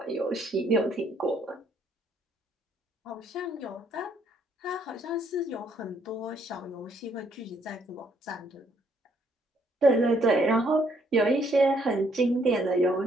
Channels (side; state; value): both; normal; correlation 0.68